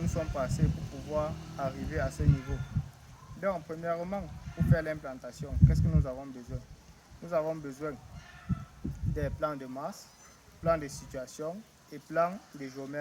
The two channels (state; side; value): identical; both; correlation 1.00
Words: nous sommes passés pour pouvoir arriver à ce niveau. Donc, premièrement, pour faire l'implantation, qu'est-ce que nous avons besoin? Nous avons besoin des plans de masse, plans de situation et plans de